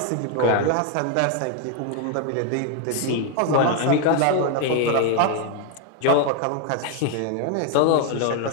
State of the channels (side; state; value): both; different; correlation 0.01